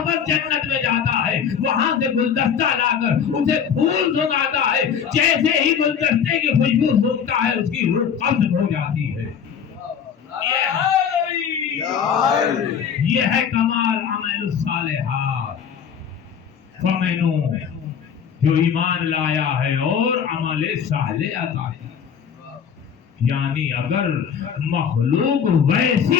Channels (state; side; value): quieter; right; 7.6 dB